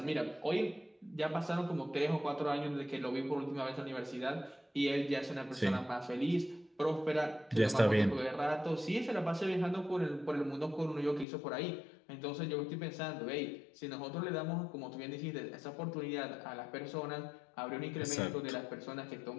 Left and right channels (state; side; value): drops out; right; at 11.2 s